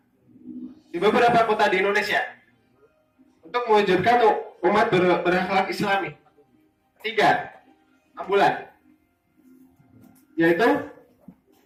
di beberapa kota di Indonesia untuk mewujudkan umat berakhlak Islami. Ketiga, ambulan, yaitu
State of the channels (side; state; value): both; identical; correlation 1.00